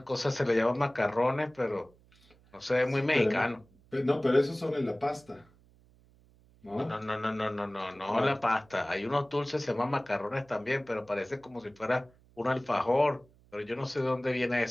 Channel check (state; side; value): noise; right; hum, 29 dB below the sound